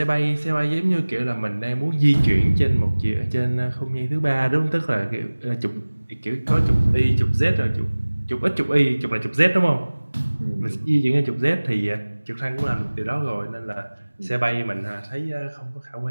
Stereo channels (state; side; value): inverted; both; correlation -1.00